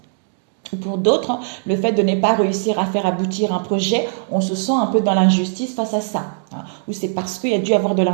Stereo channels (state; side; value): silent; left; 66 dB below the other